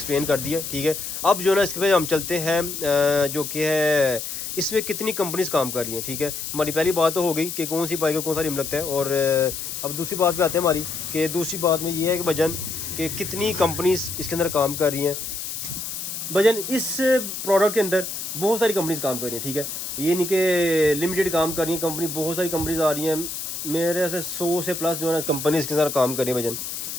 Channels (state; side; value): noise; left; hiss, 6 dB below the sound